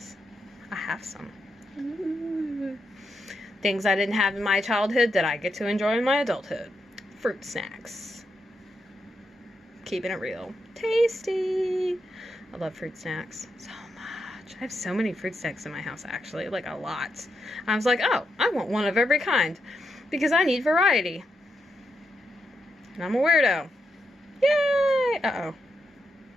I have some. Ooh. Things I didn't have in my childhood that I get to enjoy in my adulthood. Fruit snacks. keeping it real. Tasty. I love fruit snacks so much. I have so many fruit snacks in my house, actually, like a lot. I was like, oh, I want one of every kind because I need variety. And I'm a weirdo. Yay! Uh-oh.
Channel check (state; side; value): normal; both; correlation 0.83